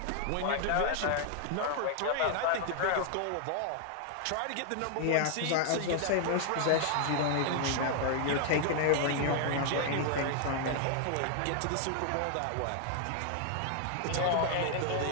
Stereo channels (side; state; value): both; different; correlation 0.00